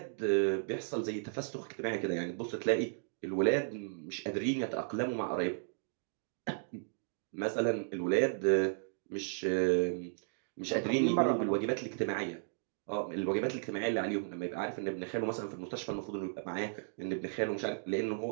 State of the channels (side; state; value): left; silent; digital silence